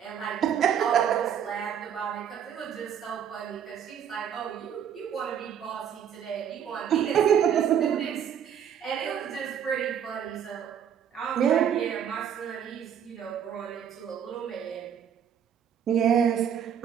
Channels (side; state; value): left; quieter; 8.6 dB